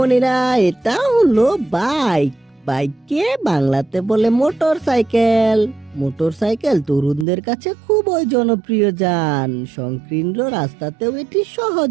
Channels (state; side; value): drops out; left; at 7.2 s